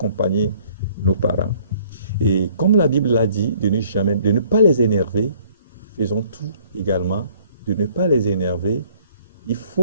nos parents. Et comme la Bible l'a dit, de ne pas les énerver, faisons tout également, de ne pas les énerver. Il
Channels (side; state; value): both; inverted; correlation -0.58